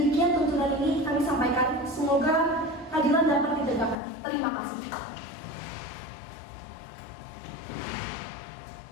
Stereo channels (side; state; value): right; drops out; at 4.0 s